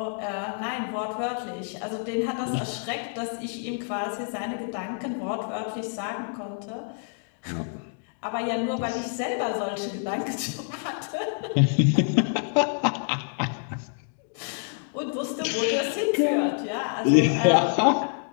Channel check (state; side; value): silent; right; 60 dB below the other